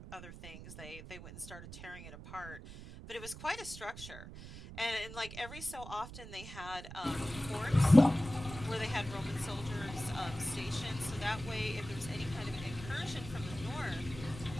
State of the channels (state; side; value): noise; right; rumble, 13 dB below the sound